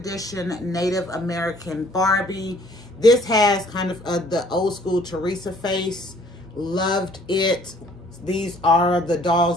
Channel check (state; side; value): normal; both; correlation 0.58